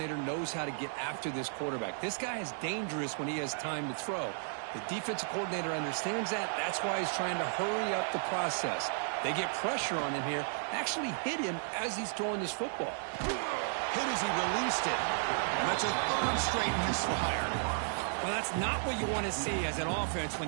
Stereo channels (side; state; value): left; silent; digital silence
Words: knows how to get after this quarterback. This guy is dangerous when he has time to throw. The defensive coordinator understands that. That's why he's trying to hurry up the process. They get pressure on him here. Actually hit him as he's throwing this football. Hit as he released it. And that's a 3rd straight misfire. Well, that's not what you want to see as an offense